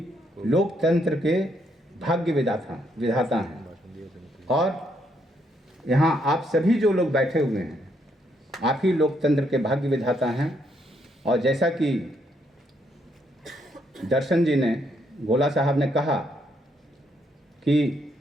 लोकतंत्र के भाग्य विधाता हैं, और यहाँ आप सभी जो लोग बैठे हुए हैं आप ही लोकतंत्र के भाग्य विधाता हैं. और जैसा कि दर्शन जी ने, गोला साहब ने कहा कि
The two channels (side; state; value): both; normal; correlation 0.74